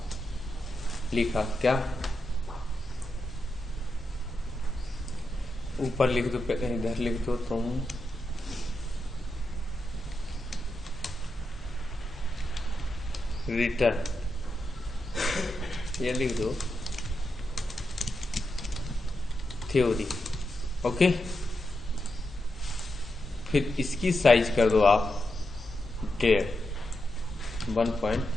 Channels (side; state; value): both; normal; correlation 0.87